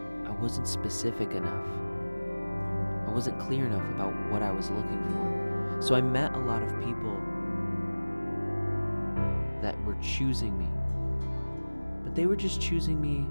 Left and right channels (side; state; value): both; inverted; correlation -1.00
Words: I wasn't specific enough. I wasn't clear enough about what I was looking for. So I met a lot of people that were choosing me, but they were just choosing me